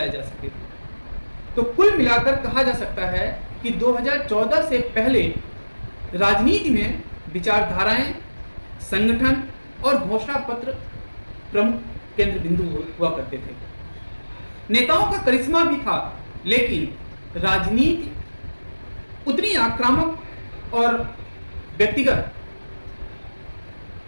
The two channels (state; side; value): inverted; both; correlation -1.00